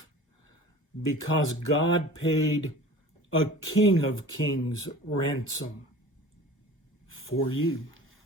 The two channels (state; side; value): normal; both; correlation 0.41